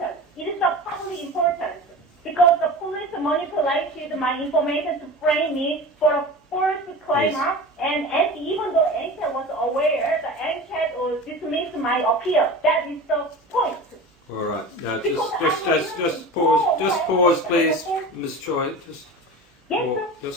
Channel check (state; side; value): normal; both; correlation 0.33